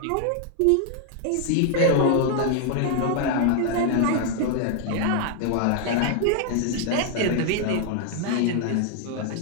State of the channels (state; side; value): different; both; correlation 0.00